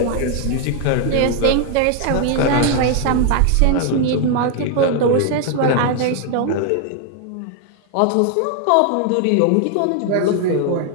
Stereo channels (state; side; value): different; both; correlation 0.00